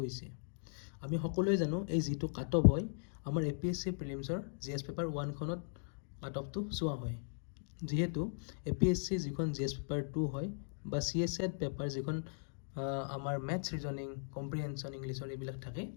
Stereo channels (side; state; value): right; silent; digital silence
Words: আমি সকলোৱে জানো এই যিটো কাট অফ হয় আমাৰ APSC প্ৰিলিমছৰ GS পেপাৰ 1খনত কাট অফটো চোৱা হয়। যিহেতু APSC যিখন GS পেপাৰ 2 হয় বা CSET পেপাৰ যিখন আমাৰ মেথছ ৰিজনিং কম্প্ৰিহেনশ্যন ইংলিছৰ এইবিলাক থাকে,